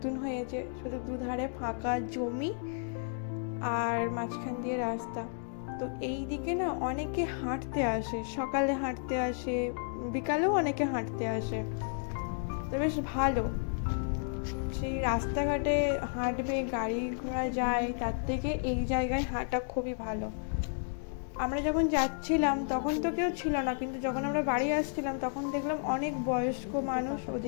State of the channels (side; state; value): right; silent; digital silence